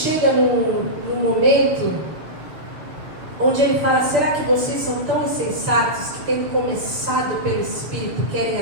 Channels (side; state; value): left; late; 6.8 ms